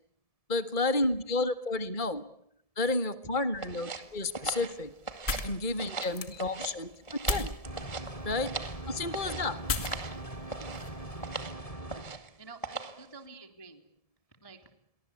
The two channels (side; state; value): right; late; 1.7 ms